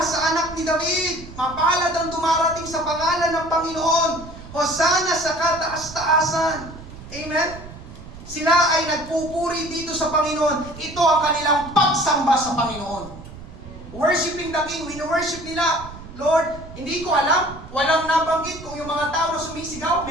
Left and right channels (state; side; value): noise; right; rumble, 15 dB below the sound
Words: sa anak ni David! Mapalad ang dumarating sa pangalan ng Panginoon. Hosana sa kataas-taasan. Amen? Sila ay nagpupuri dito sa Panginoon. Ito ang kanilang pagsamba sa Panginoon. Worshiping the King. Wino-worship nila. Lord, hindi ko alam. Walang nabanggit kung yung mga tao na sumisigaw,